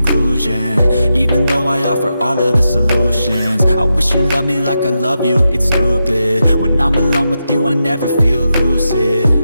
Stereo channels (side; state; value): both; inverted; correlation -0.87